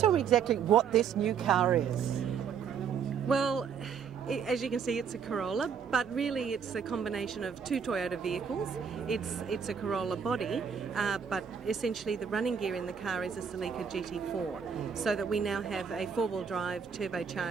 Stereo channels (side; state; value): left; quieter; 6.9 dB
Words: me exactly what this new car is. Well, as you can see, it's a Corolla, but really it's a combination of two Toyota vehicles. It's a Corolla body, but essentially the running gear in the car is a Celica GT4, so that we now have a four-wheel drive